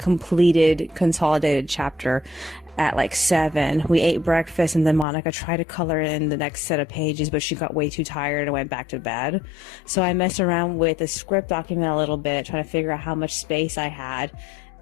consolidated chapter, at like 7. We ate breakfast, and then Monica tried to color in the next set of pages, but she got way too tired and went back to bed. So I messed around with the script document a little bit, trying to figure out how much space I had,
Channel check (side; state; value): right; drops out; at 5.1 s